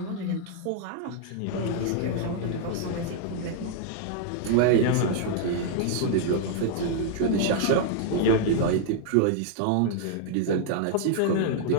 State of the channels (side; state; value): both; different; correlation -0.01